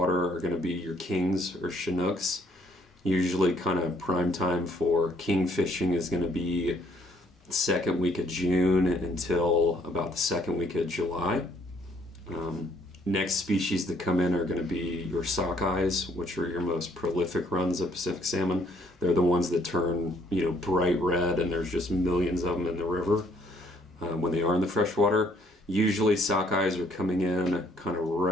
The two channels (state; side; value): normal; both; correlation 0.66